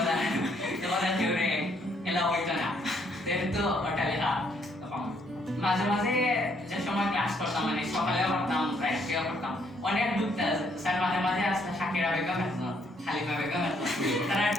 এবার কেউরে এলা হইতো না, যেহেতু ওটা লেখা। তখন মাঝে মাঝে যে সময় ক্লাস করতাম মানে সকালেও করতাম রাত্রেও করতাম, অনেক ঢুকতাম স্যার মাঝে মাঝে আসলে শাকিরা বেগম আসতো, হালিমা বেগম আসতো,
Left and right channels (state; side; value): normal; both; correlation 0.69